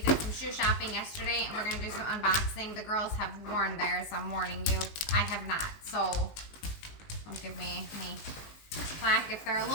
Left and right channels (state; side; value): late; right; 19 ms